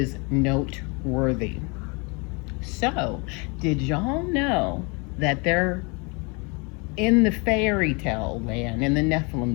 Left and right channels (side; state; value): right; quieter; 30.7 dB